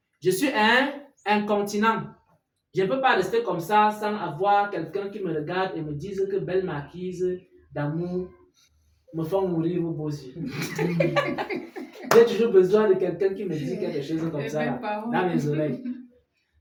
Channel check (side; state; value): both; identical; correlation 1.00